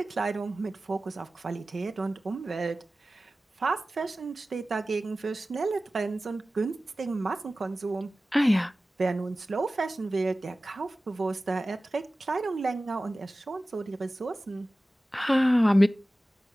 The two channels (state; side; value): normal; both; correlation 0.96